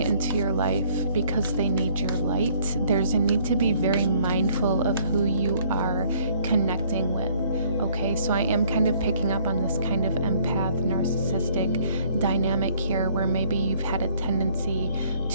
your life because they need your light. There's a need to be very mindful of who you are connecting with. Okay, so I am kind of picking up on this kind of empath, narcissistic dynamic here, where maybe you've had a tendency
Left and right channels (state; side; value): inverted; both; correlation -0.61